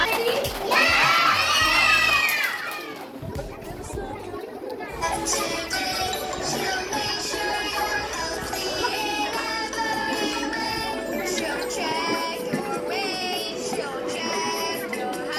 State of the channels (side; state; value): both; identical; correlation 1.00